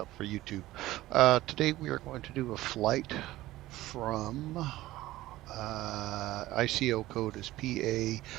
for YouTube. Today we are going to do a flight from ICO code is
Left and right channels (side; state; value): left; quieter; 16.5 dB